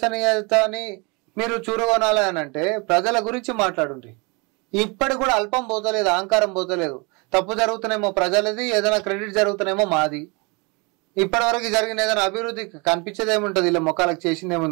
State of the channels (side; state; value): left; quieter; 29.7 dB